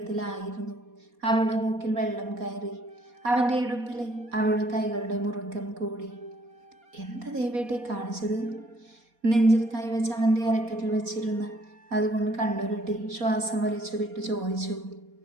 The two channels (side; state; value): left; late; 4.2 ms